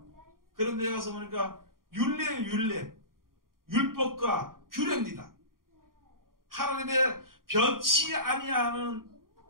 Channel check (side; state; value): left; late; 0.91 ms